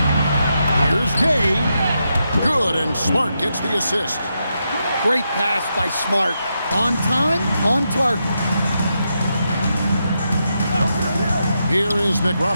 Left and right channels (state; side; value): inverted; both; correlation -0.84